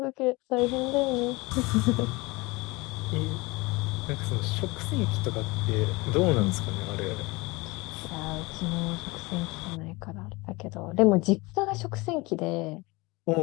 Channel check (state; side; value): quieter; right; 23.9 dB